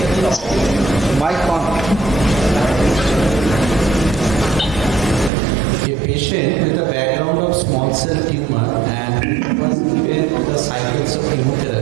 A patient with a background of small cell tumor and was given the cycles of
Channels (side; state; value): left; drops out; at 5.3 s